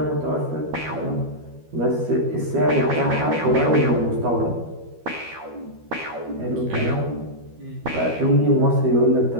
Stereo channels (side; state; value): left; late; 12 ms